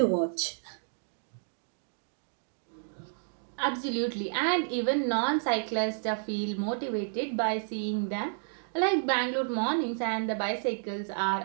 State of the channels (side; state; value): left; silent; digital silence